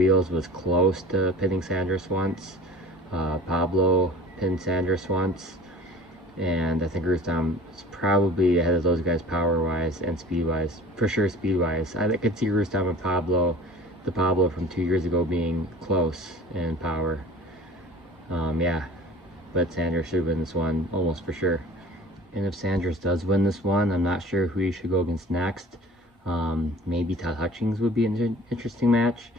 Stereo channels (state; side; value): normal; both; correlation 0.43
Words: was close to pinning Sanders once. Pablo pinned Sanders once, and I think Rustam is probably ahead of those guys power-wise and speed-wise. For sure, speed-wise. I could see Rustam and Pablo, the Pablo from 2 years ago, being close in power. Yeah, but Sanders should win this one almost for sure. And if Sanders does win this one, I'm not sure who he should go against next. Maybe Todd Hutchings would be an interesting match.